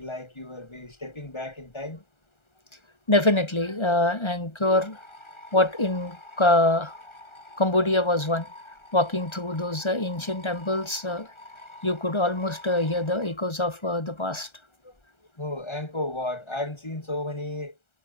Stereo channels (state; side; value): late; right; 1.3 ms